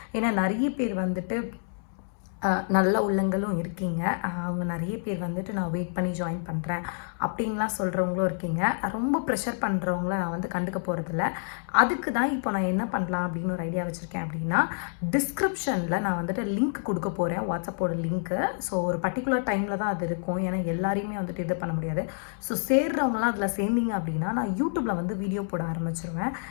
ஏன்னா நிறைய பேர் வந்துட்டு நல்ல உள்ளங்களும் இருக்கீங்க. அவங்க நிறைய பேர் வந்துட்டு நான் வெயிட் பண்ணி ஜாயின் பண்ணுறேன் அப்படின்லாம் சொல்கிறவங்களும் இருக்கீங்க. ரொம்ப ப்ரெஷர் பண்ணுறவங்கள நான் வந்து கண்டுக்க போகிறதில்ல. அதுக்கு தான் இப்போ நான் என்ன பண்ணலாம் அப்படின்னு ஒரு ஐடியா வச்சுருக்கேன். அப்படின்னா டிஸ்கிரிப்ஷனில் நான் வந்துட்டு லிங்க் கொடுக்க போகிறேன், வாட்ஸ்அப்போட லிங்க்கு. ஸோ ஒரு பர்டிகுலர் டைமில் தான் அது இருக்கும். ஏன்னா எல்லாரையுமே வந்துட்டு இது பண்ண முடியாது. ஸோ சேர்றவங்களாம் அதில் சேர்ந்தீங்க அப்படின்னா நான் யூடியூப்பில் வந்து வீடியோ போட ஆரம்பிச்சிருவேன்.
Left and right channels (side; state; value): right; silent; 59 dB below the other